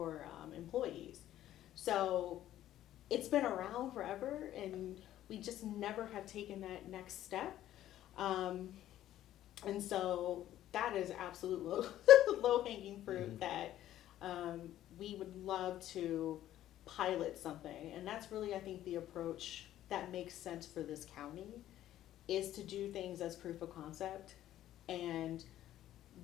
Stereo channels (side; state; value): right; quieter; 12.9 dB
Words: employees. So it's been around forever, and we just never have taken that next step. And so that is absolute low hanging fruit that we would love to pilot something. And that's really, I think, the approach that makes sense for this county, is to do things as proof of concept and